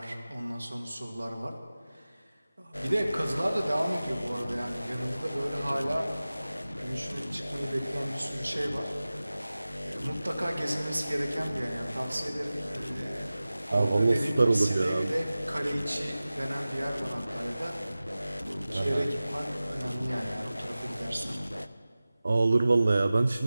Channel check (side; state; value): both; inverted; correlation -0.97